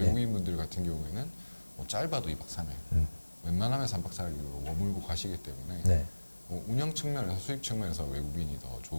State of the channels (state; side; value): inverted; both; correlation -1.00